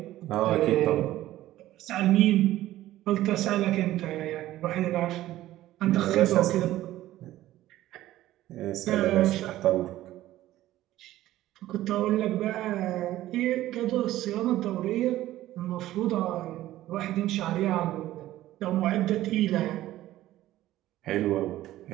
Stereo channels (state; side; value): quieter; left; 14.8 dB